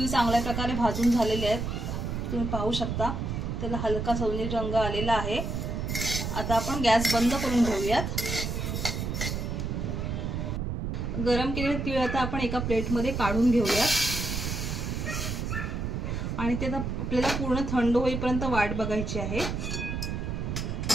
चांगल्या प्रकारे भाजून झालेले आहेत। तुम्ही पाहू शकता त्याला हलका सोनेरी रंग आलेला आहे। आता आपण गॅस बंद करून घेऊयात। गरम केलेले तीळ आता आपण एका प्लेटमध्ये काढून घेऊयात आणि ते आता आपल्याला पूर्ण थंड होईपर्यंत वाट बघायची आहे।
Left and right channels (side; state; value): right; noise; rumble, 3 dB below the sound